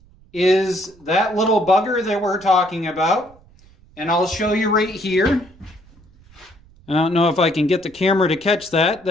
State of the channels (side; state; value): right; noise; rumble, 27 dB below the sound